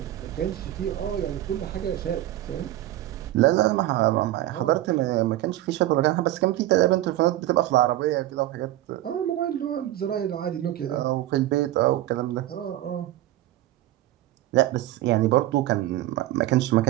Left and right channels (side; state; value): left; quieter; 14.8 dB